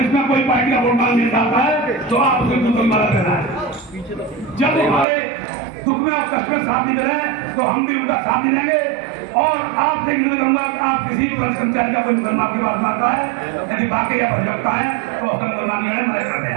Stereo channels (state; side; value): drops out; left; at 5.1 s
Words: में कोई पार्टी का वोट मांगने आता है तो आप उसको बिल्कुल मदद करना है। जब हमारे दुख में और कष्ट में साथ नहीं दे रहे तो हम भी उनका साथ नहीं देंगे। और आपसे निवेदन करूंगा कि आप किसी भी पुलिस कर्मचारी का कोई मुकदमा आपके पास आता है, यदि वाकई या भजकता है तो उसका मुकदमा मदद करते